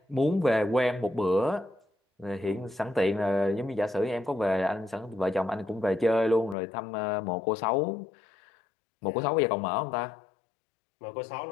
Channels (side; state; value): right; drops out; at 6.6 s